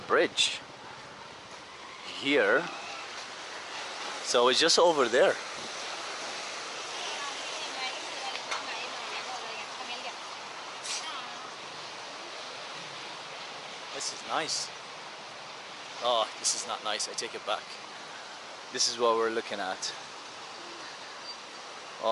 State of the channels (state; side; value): identical; both; correlation 1.00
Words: bridge here. So it's just over there. This is nice. Oh, this is not nice. I take it back. This is what we're looking at.